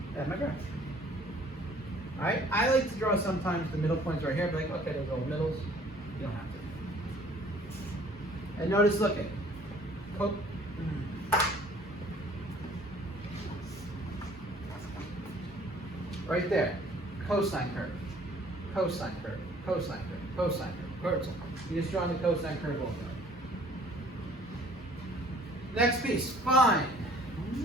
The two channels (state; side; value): normal; both; correlation 0.55